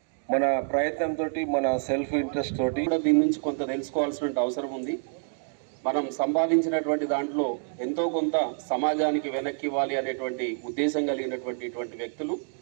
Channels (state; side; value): silent; left; digital silence